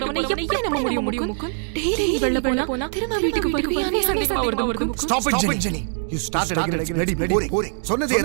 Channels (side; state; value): left; silent; digital silence